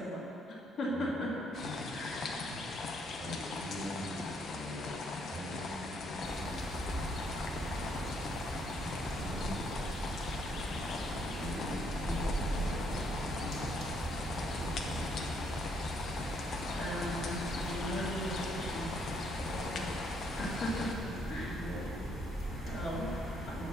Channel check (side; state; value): both; normal; correlation 0.71